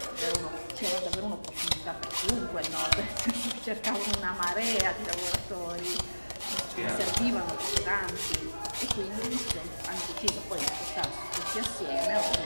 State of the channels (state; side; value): inverted; both; correlation -1.00